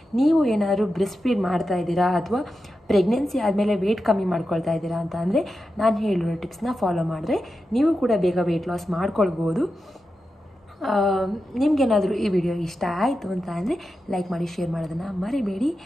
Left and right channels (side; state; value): both; normal; correlation 0.90